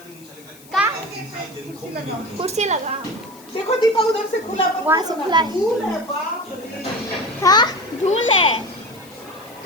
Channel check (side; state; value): left; noise; hiss, 23 dB below the sound